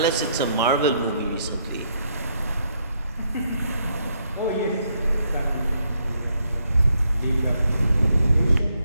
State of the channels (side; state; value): both; inverted; correlation -0.75